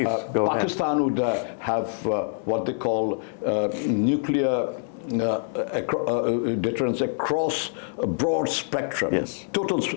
go Pakistan ahead. would have what they call nuclear deterrence across a broad spectrum. Yes. Total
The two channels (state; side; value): silent; right; 62 dB below the other